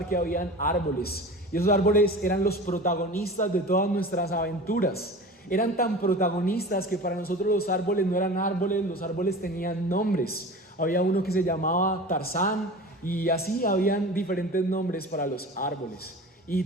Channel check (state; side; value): normal; both; correlation 0.35